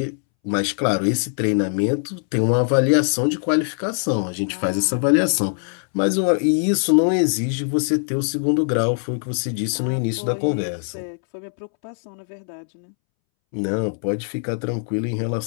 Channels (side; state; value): right; silent; 64 dB below the other